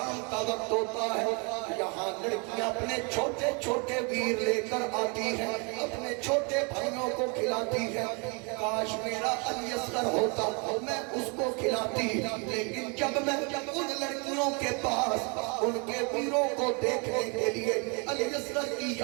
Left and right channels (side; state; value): left; quieter; 33.2 dB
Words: کا وقت ہوتا ہے یہاں لڑکیاں اپنے چھوٹے چھوٹے ویر لے کر آتی ہیں، اپنے چھوٹے بھائیوں کو کھلاتی ہیں۔ کاش میرا علی اصغر ہوتا میں اس کو کھلاتی، لیکن جب میں ان لڑکیوں کے پاس ان کے ویروں کو دیکھنے کے لیے علی اصغر کی